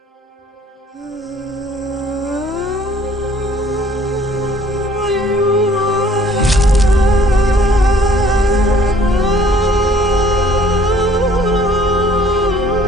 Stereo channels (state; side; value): normal; both; correlation 0.58